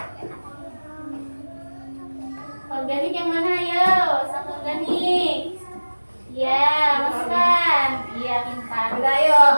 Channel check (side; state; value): both; inverted; correlation -1.00